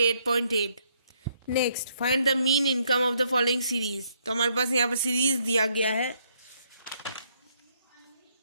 Next find the mean income of the following series. तो हमारे पास यहाँ पर सीरीज दिया गया है,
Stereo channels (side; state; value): both; inverted; correlation -0.71